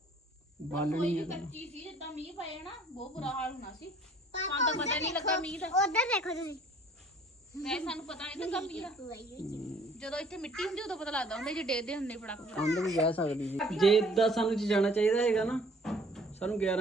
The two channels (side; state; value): both; normal; correlation 0.56